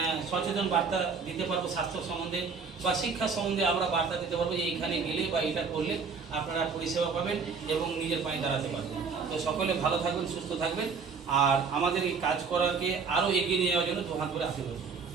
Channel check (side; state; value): left; quieter; 5.2 dB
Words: সচেতন বার্তা দিতে পারবো, স্বাস্থ্য সম্বন্ধে বা শিক্ষা সম্বন্ধে আমরা বার্তা দিতে পারবো যে এইখানে গেলে বা এটা করলে আপনারা পরিষেবা পাবেন এবং নিজের পায়ে দাঁড়াতে পারবেন। তো সকলে ভালো থাকবেন, সুস্থ থাকবেন আর আমাদের এই কাজ করাকে আরও এগিয়ে নিয়ে যাওয়ার জন্য 2 হাত করে আশীর্বাদ।